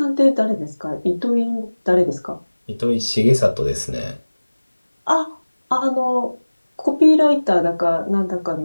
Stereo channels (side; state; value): both; inverted; correlation -1.00